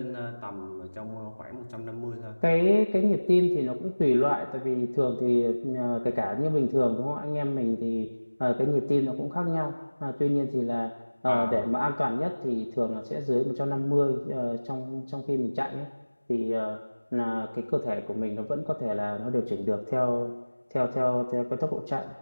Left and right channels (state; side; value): inverted; both; correlation -1.00